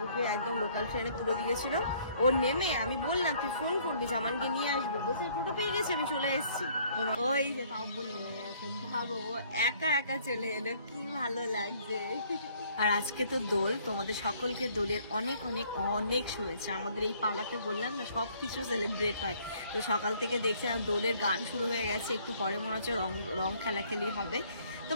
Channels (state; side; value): inverted; both; correlation -0.61